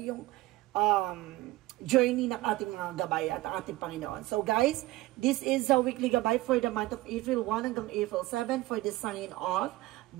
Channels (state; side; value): quieter; left; 18.3 dB